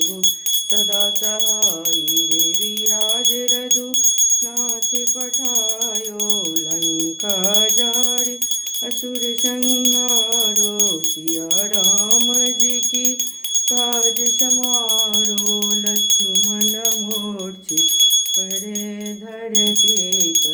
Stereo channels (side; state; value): both; identical; correlation 1.00